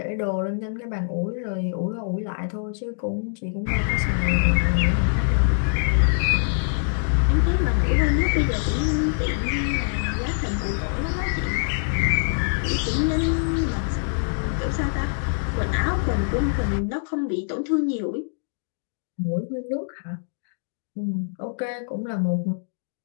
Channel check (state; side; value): silent; right; digital silence